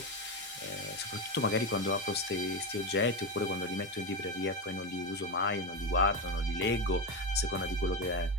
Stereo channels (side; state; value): both; normal; correlation 0.14